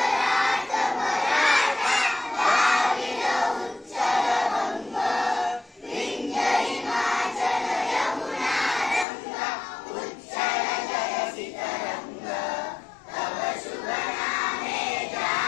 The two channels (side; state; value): right; drops out; at 9.1 s